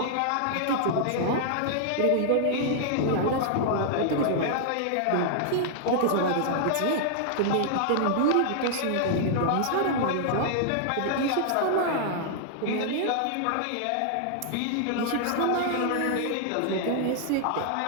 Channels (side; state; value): both; different; correlation -0.01